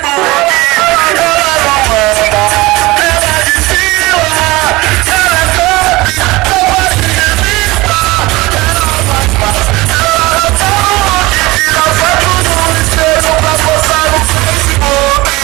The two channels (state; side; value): quieter; left; 21.2 dB